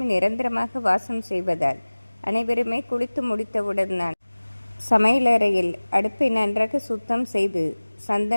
நிரந்தரமாக வாசம் செய்வதால் அனைவருமே குளித்து முடித்தவுடன் தான் சமையலறையில் அடுப்பை நன்றாக சுத்தம் செய்து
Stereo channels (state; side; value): inverted; both; correlation -1.00